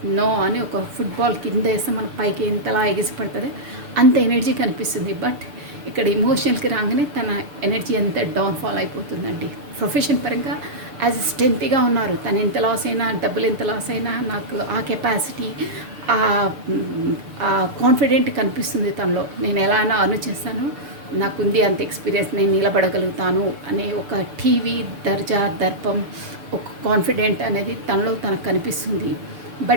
నో అని ఒక ఫుట్బాల్ కింద వేస్తే మన పైకి ఎంతలా ఎగిసిపడుతుంది అంత ఎనర్జీ కనిపిస్తుంది. బట్ ఇక్కడ ఎమోషనల్కి రాగానే తన ఎనర్జీ అంతా డౌన్ఫాల్ అయిపోతుందండి. ప్రొఫెషన్ పరంగా యాజ్ స్ట్రెంత్గా ఉన్నారు. తను ఎంత లాస్ అయినా, డబ్బులు ఎంత లాస్ అయినా నాకు ఆ కెపాసిటీ, ఆ కాన్ఫిడెంట్ కనిపిస్తుంది తనలో. నేను ఎలా అయినా అర్న్ చేస్తాను, నాకుంది అంత ఎక్స్పీరియన్స్, నేను నిలబడగలుగుతాను అనే ఒక టీవీ దర్జా దర్పం, ఒక కాన్ఫిడెంట్ అనేది తనలో తనకు కనిపిస్తుంది.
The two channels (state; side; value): late; left; 6.8 ms